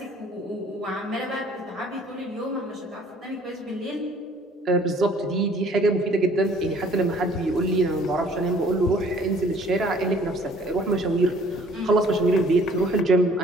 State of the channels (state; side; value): normal; both; correlation 0.56